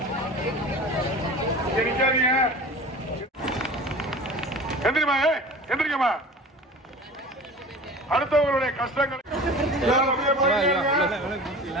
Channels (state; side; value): normal; both; correlation 0.38